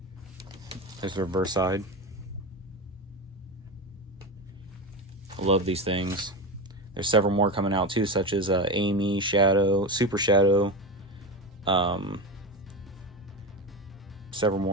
There's the reverse side. I love these things. There's several more coming out too, such as Amy, Shadow, Super Shadow, several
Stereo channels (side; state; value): both; normal; correlation 0.20